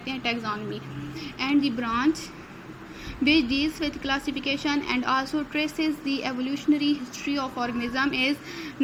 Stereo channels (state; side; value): identical; both; correlation 1.00